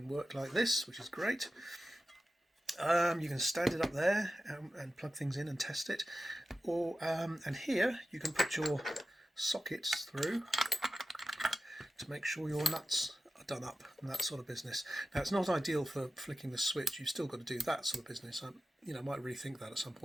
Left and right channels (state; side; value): normal; both; correlation 0.93